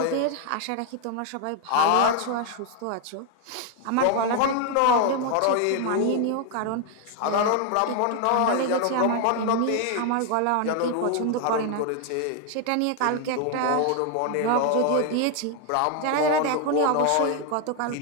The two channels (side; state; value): both; different; correlation 0.01